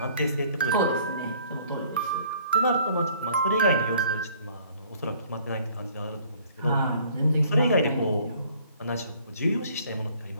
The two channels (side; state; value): both; inverted; correlation -0.57